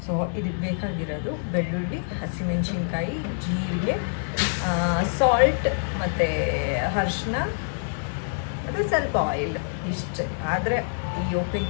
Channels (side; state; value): right; silent; digital silence